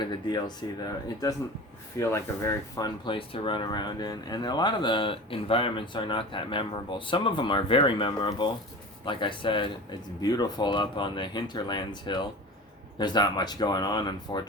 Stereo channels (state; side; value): normal; both; correlation 0.34